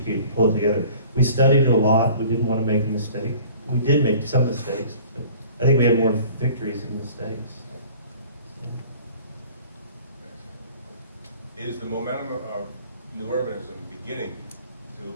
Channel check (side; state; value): both; inverted; correlation -0.48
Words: and pull it together. We studied it a lot. We didn't want to make a mistake. We did make some mistakes, but I think we had more victories than mistakes. Is the momentum of new urbanism beginning